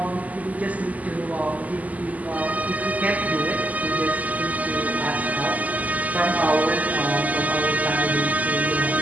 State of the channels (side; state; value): left; late; 0.076 ms